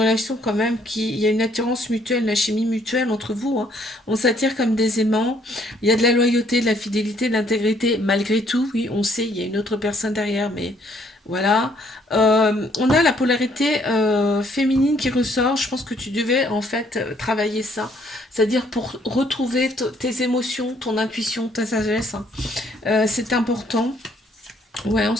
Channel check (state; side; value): normal; both; correlation 0.65